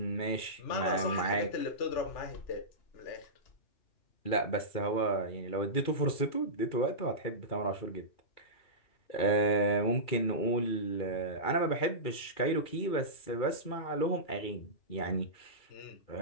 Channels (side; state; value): right; late; 2.4 ms